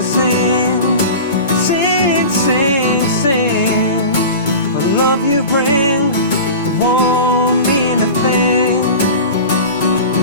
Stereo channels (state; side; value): inverted; both; correlation -0.33